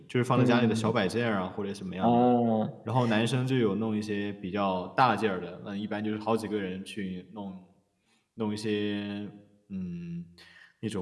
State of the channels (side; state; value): both; identical; correlation 1.00